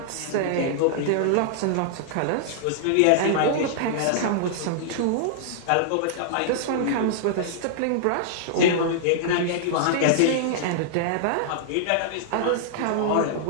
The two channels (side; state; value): both; different; correlation -0.01